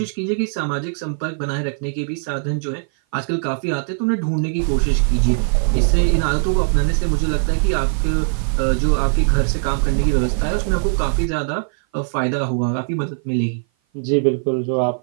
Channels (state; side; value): silent; left; 56 dB below the other